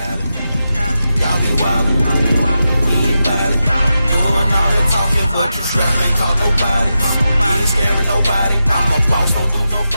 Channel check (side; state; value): both; inverted; correlation -0.89